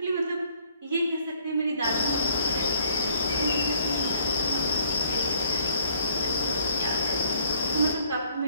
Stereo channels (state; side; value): inverted; both; correlation -0.63